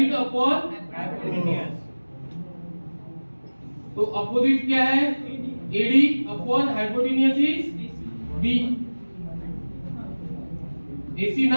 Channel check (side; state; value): both; inverted; correlation -1.00